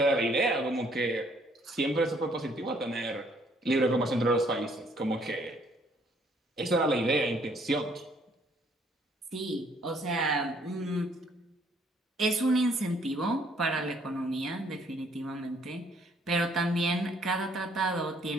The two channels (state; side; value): normal; both; correlation 0.65